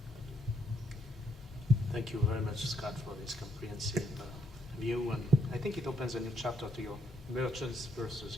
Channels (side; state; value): both; normal; correlation 0.73